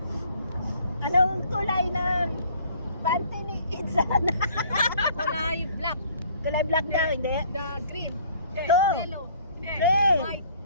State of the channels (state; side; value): inverted; both; correlation -0.57